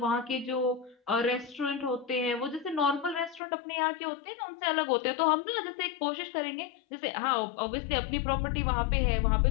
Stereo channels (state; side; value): drops out; right; at 3.4 s